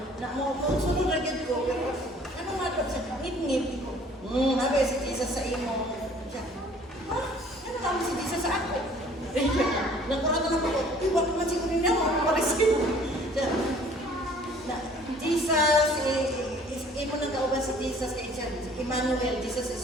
na mo, kung sunod na gid ko, pero ano nga ito? Ngit-ngit. Sabi si Jesus sa imo. Siya, ha? Ano kami si Jesus sa ako? Nagkurata na ako, wag naman siguro niya mo, mariskin. Jesus, imo nang kauban si Jesus kay siya, Emmanuel, Jesus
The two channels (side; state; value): both; normal; correlation 0.54